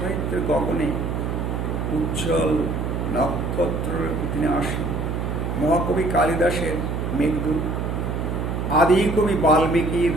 গগনে উজ্জ্বল নক্ষত্রের তিনি আসেন। মহাকবি কালিদাসের মেঘদূত, আদিকবি বাল্মীকির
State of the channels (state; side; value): noise; right; hum, 2 dB below the sound